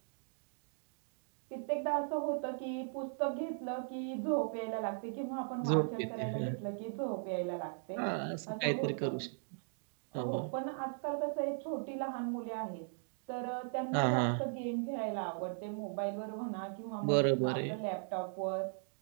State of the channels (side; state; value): left; silent; digital silence